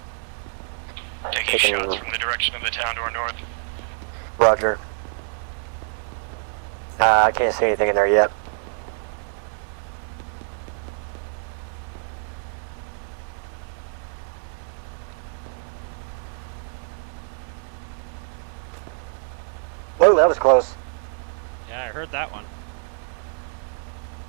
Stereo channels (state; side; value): silent; left; digital silence